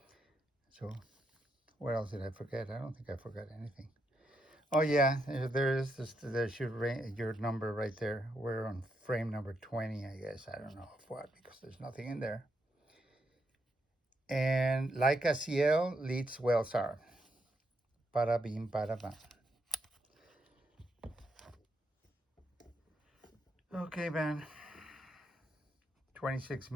so what else did I forget? I don't think I forgot anything. Oh yeah, there's your number right there. We're on frame number 20, I guess. I don't know of what, because there's nothing in there. And Leica CL Leitz Wetzlar. Bada bim, bada bam. Okay, man. 26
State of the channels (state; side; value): normal; both; correlation 0.80